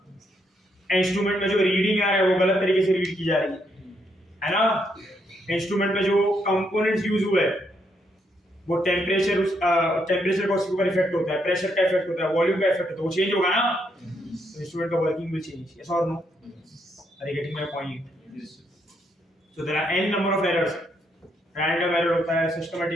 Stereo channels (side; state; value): both; normal; correlation 0.76